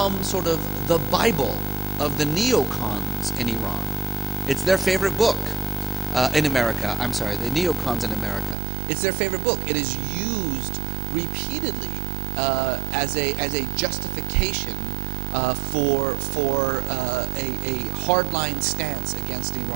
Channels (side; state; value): left; drops out; at 8.6 s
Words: sort of the Bible of the neocons in Iran. It's their favorite book in America. I'm sorry, the neocons in America. It's their favorite book. It is used repeatedly as a justification for a hardline stance against